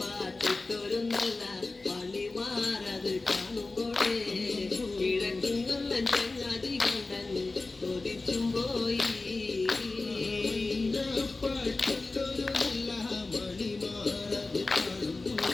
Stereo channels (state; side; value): quieter; right; 3.4 dB